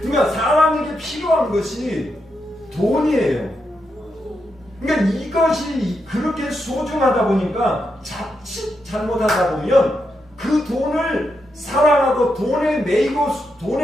그러니까 사람에게 필요한 것이 돈이에요. 그러니까 이것이 그렇게 소중하다 보니까 자칫 잘못하다 보면 그 돈을 사랑하고 돈에 매이고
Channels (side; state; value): both; normal; correlation 0.84